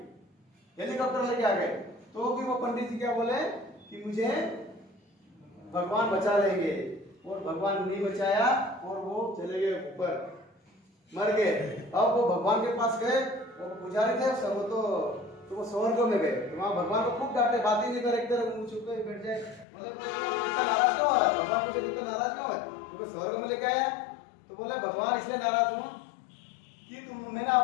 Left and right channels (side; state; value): right; drops out; at 19.7 s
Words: हेलीकॉप्टर लेके आ गए। तो भी वो पंडित जी क्या बोले कि मुझे भगवान बचा लेंगे, और भगवान नहीं बचाया, और वो चले गए ऊपर, मर गए। अब वो भगवान के पास गए, वो पुजारी थे सब, तो वो स्वर्ग में गए। तो वहां भगवान को खूब डांटे, बात ही नहीं करे, एक तरह मुंह छुप के बैठ जाए। मतलब इतना नाराज क्यों है भगवान मुझे, इतना नाराज क्यों है? तो स्वर्ग में लेके आया। तो बोले भगवान इसलिए नाराज हूं कि मैंने